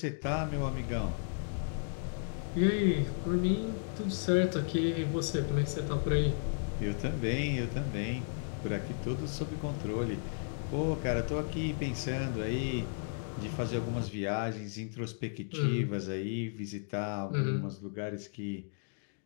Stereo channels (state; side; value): silent; right; digital silence